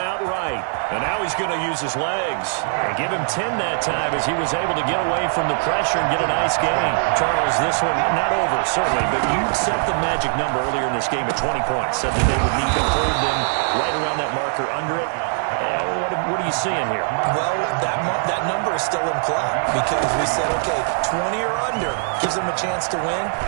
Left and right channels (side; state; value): left; silent; digital silence